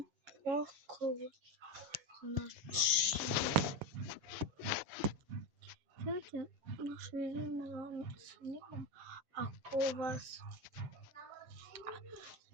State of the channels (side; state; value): left; late; 7.5 ms